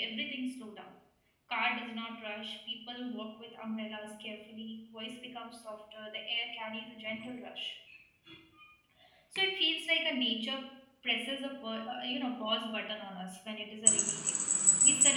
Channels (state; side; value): identical; both; correlation 1.00